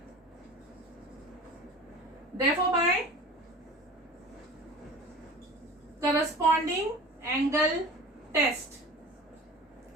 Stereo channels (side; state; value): both; normal; correlation 0.39